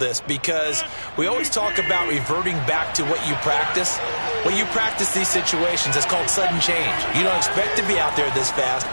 because we always talk about reverting back to what you practice. When you practice these situations, it's called sudden change. You don't expect to be out there this fast,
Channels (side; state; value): both; inverted; correlation -1.00